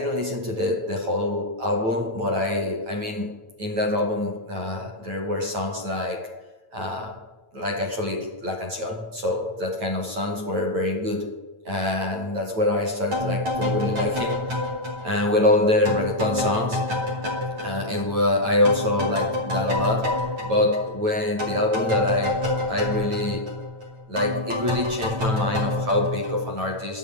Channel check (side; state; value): left; late; 9.1 ms